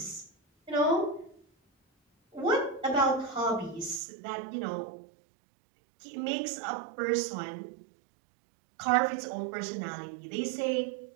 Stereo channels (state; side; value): drops out; left; at 4.0 s